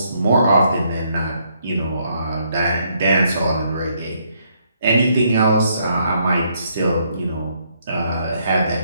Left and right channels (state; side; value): inverted; both; correlation -0.72